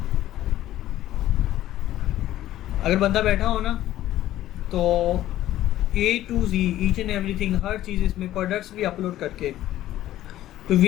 अगर बंदा बैठा हो ना, तो A to Z each and everything, हर चीज़ इसमें प्रोडक्ट्स भी अपलोड करके, तो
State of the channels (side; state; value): right; quieter; 13.8 dB